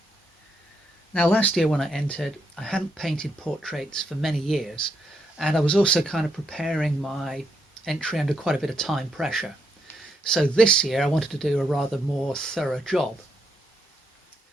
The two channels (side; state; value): both; normal; correlation 0.78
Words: Now, last year when I entered, I hadn't painted portraits for many years, and I was also kind of preparing my entry under quite a bit of time pressure. So this year I wanted to do a rather more thorough job.